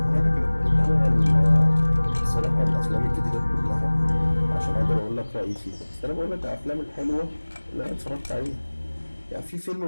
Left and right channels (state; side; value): inverted; both; correlation -1.00